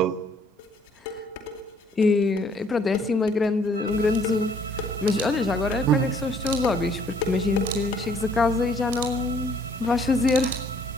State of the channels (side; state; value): both; normal; correlation 0.62